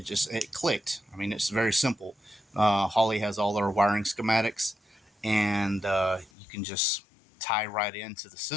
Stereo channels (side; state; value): right; drops out; at 6.3 s